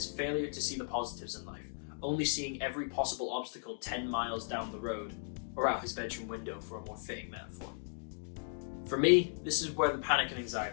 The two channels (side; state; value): right; silent; digital silence